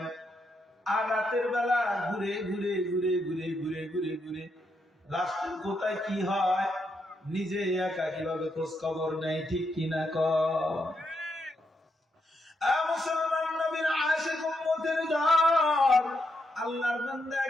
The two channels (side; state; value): both; normal; correlation 0.80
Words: আর রাতের বেলা ঘুরে ঘুরে ঘুরে ঘুরে ঘুরে ঘুরে ঘুরে রাষ্ট্রের কোথায় কি হয় নিজে একা কিভাবে খোঁজ খবর নেই, ঠিক কিনা কর? মুসলমান নবীর আশিক উম্মতের দল, আল্লাহর বান্দা